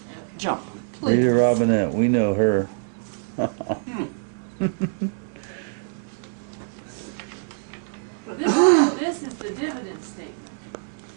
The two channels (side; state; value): left; silent; digital silence